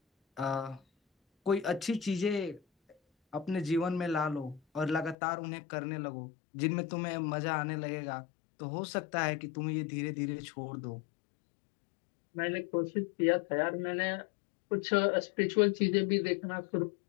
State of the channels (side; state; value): right; drops out; at 5.2 s